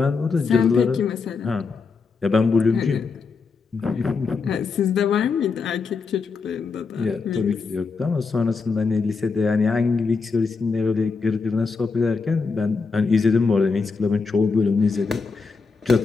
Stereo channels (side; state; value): right; quieter; 4.7 dB